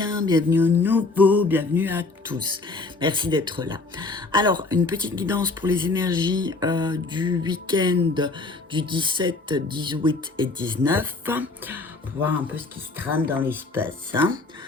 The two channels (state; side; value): quieter; right; 3.5 dB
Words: bienvenue aux nouveaux, bienvenue à tous. Merci d'être là. Alors, une petite guidance pour les énergies du week-end du 17, 18 et 19, pour voir un peu ce qui se trame dans l'espace.